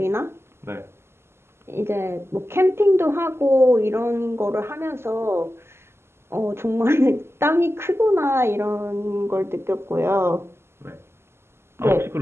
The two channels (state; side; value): late; left; 0.12 ms